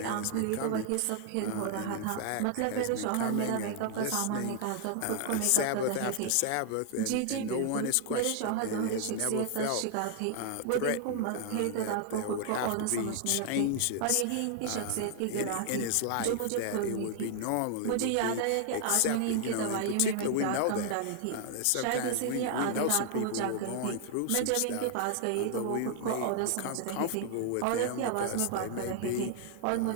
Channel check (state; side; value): different; both; correlation 0.00